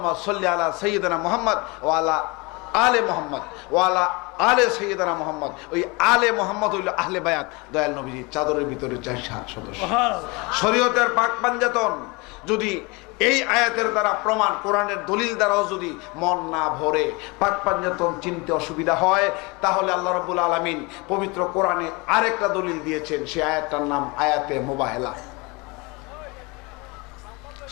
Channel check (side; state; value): right; quieter; 27.0 dB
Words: সাল্লি আলা সাইয়্যিদিনা মুহাম্মদ ওয়া আলা আলে মুহাম্মদ ওয়া আলা আলে সাইয়্যিদিনা মুহাম্মদ। ওই আলে মুহাম্মদ হইল আহলে বায়াত, দয়াল নবীজির চাদরের ভিতরে 4 সদস্য। শরীয়তের পাক পাঞ্জাতন যদি এই আয়াতের দ্বারা প্রমাণ, কোরআনের দলিল দ্বারাও যদি মন না ভরে, পাক পাঞ্জাতন চিনতে অসুবিধা হয়, তাহলে আল্লাহ রাব্বুল আলামিন পবিত্র কোরআনে আরেকটা দলিল দিয়েছেন। সেই আয়াতটার নাম আয়াতে মুবাহেলা,